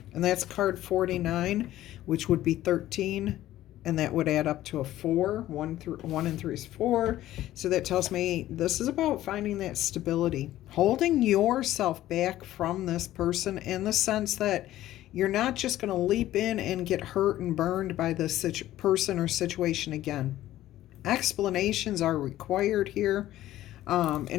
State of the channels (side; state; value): right; quieter; 14.2 dB